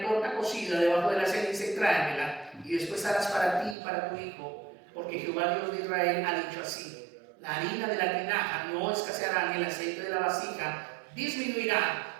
torta cocida debajo de la ceniza y tráemela, y después harás para ti y para tu hijo, porque Jehová Dios de Israel ha dicho así, la harina de la tinaja no escaseará ni el aceite de la vasija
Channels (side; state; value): left; drops out; at 3.8 s